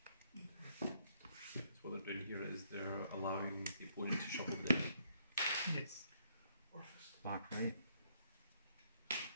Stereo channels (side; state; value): both; inverted; correlation -0.71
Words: So what they're doing here is they're allowing the opponent to shuffle the deck. Yes. Orfist. Back right.